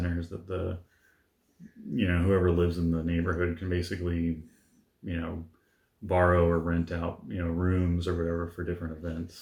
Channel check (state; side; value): identical; both; correlation 1.00